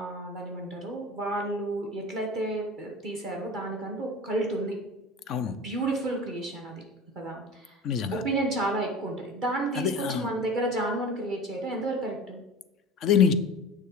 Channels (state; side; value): normal; both; correlation 0.35